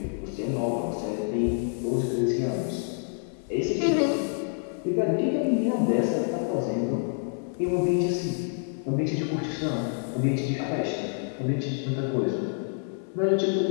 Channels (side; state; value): right; silent; 60 dB below the other